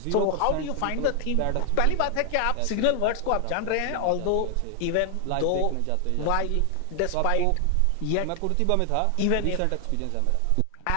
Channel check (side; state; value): both; different; correlation 0.00